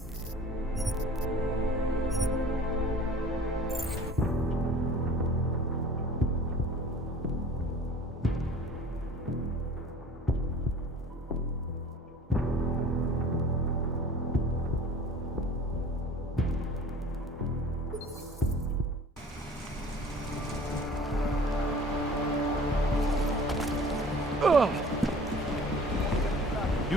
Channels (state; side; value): normal; both; correlation 0.46